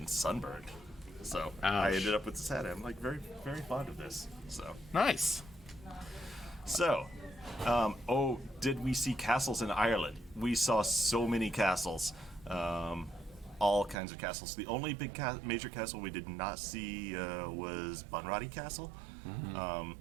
sunburned. So I Ouch. ended up with this hat. I'm like very, very fond of this. Nice. So, did we see castles in Ireland? We saw so many castles, all kinds of castles. The only big major castle we did not see was Bunratty Castle. Mm-hmm.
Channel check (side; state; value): left; drops out; at 14.0 s